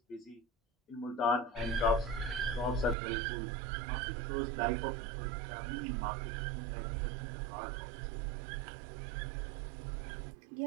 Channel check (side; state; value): left; drops out; at 3.0 s